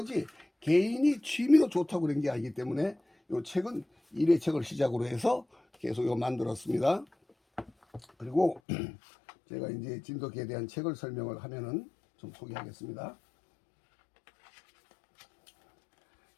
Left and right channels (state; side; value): drops out; right; at 8.6 s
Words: 개인이 취미로 좋다고 그런 게 아니기 때문에 이 책은 1회 책을 시작으로 해서 계속 이거 만들었습니다. 그리고 제가 이제 진돗개에 대한 책을 설명을 하면은 좀 소개하겠습니다.